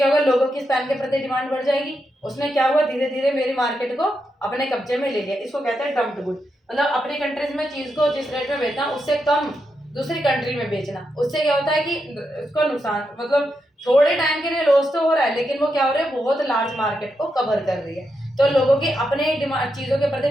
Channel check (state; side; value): normal; both; correlation 0.84